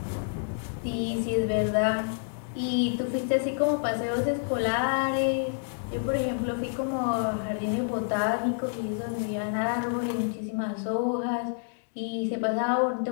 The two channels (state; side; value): silent; right; digital silence